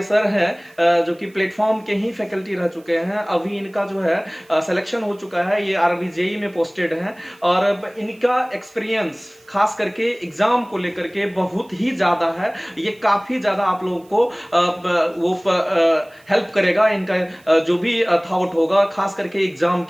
सर हैं जो कि प्लेटफॉर्म के ही फैकल्टी रह चुके हैं, अभी इनका जो है सिलेक्शन हो चुका है, ये आरबी जेई में पोस्टेड हैं और इनका एक्सपीरियंस खास करके एग्जाम को लेकर के बहुत ही ज्यादा है। ये काफी ज्यादा आप लोगों को वो हेल्प करेगा, इनका जो भी थॉट होगा खास करके एग्जाम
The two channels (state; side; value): noise; right; hiss, 30 dB below the sound